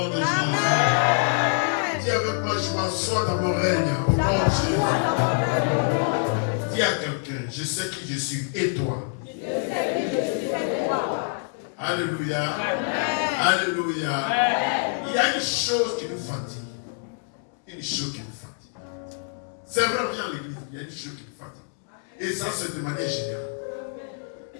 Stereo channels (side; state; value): right; silent; 61 dB below the other